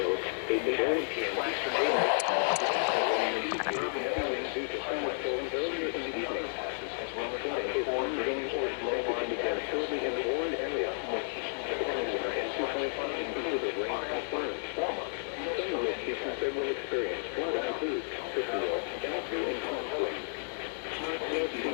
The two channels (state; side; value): silent; right; digital silence